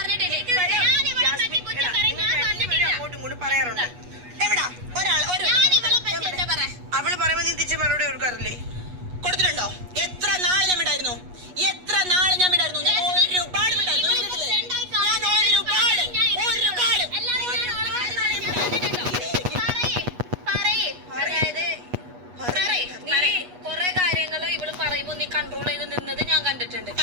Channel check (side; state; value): left; late; 8.3 ms